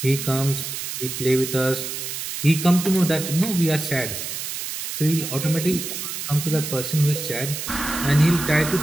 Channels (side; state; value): right; noise; hiss, 6 dB below the sound